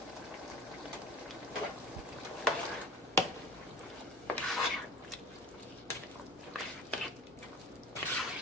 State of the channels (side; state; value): both; normal; correlation 0.39